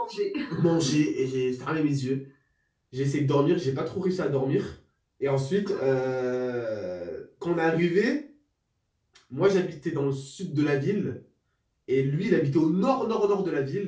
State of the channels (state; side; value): identical; both; correlation 1.00